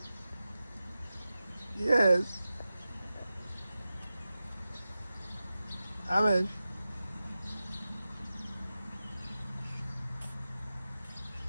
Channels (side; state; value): both; inverted; correlation -0.94